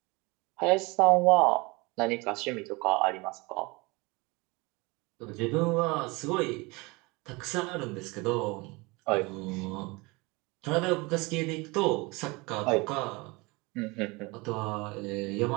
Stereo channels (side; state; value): left; quieter; 25.4 dB